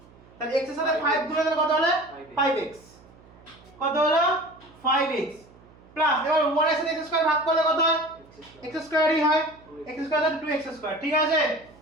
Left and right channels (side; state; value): right; noise; hum, 25 dB below the sound